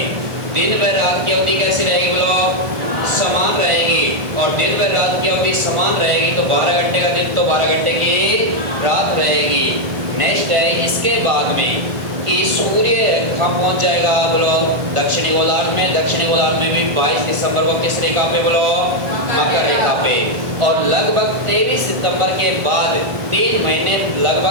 दिन व रात की अवधि कैसी रहेगी बोलो? समान रहेगी। और दिन व रात की अवधि समान रहेगी तो 12 घंटे का दिन तो 12 घंटे की रात रहेगी। नेक्स्ट है इसके बाद में कि सूर्य कहाँ पहुंच जाएगा बोलो? दक्षिणी गोलार्ध में। दक्षिणी गोलार्ध में भी 22 दिसंबर को किस रेखा पे बोलो? मकर रेखा पे। और लगभग 23 सितंबर के बाद 3 महीने,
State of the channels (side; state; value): left; late; 1.6 ms